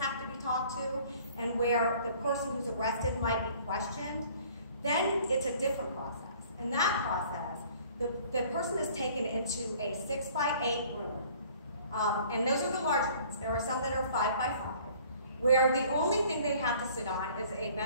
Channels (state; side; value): inverted; both; correlation -0.54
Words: to be talked to and where the person who's arrested might be questioned, then it's a different process. In that process, the person is taken into a 6x8 room, and those are the large ones. There are some that are 5x5, where the only thing they have to sit on is a